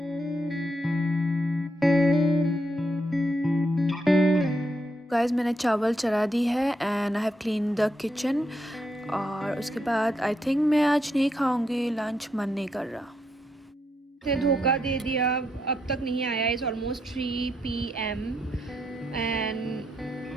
Guys मैंने चावल चढ़ा दी है and I have clean the kitchen. और उसके बाद आई थिंक मैं आज नहीं खाऊंगी लंच, मन नहीं कर रहा। ने धोखा दे दिया, अब तक नहीं आया। इज़ ऑलमोस्ट 3 PM एंड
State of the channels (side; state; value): both; normal; correlation 0.79